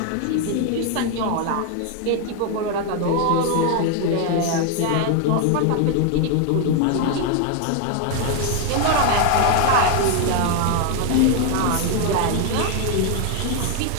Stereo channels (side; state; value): both; different; correlation 0.01